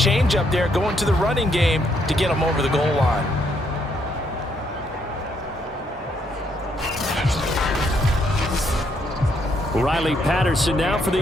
up there going to the running game to get him over the goal line. Riley Patterson now for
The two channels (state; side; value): normal; both; correlation 0.73